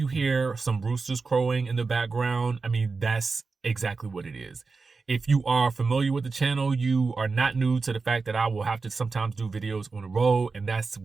hear some roosters crowing in the background, I mean, that's exactly what it is. If you are familiar with the channel, you are not new to the fact that I will have to sometimes do videos on the road, and that's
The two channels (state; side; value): quieter; left; 4.3 dB